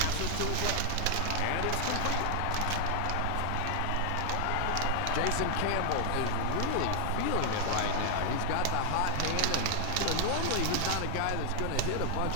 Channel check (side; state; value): both; different; correlation 0.00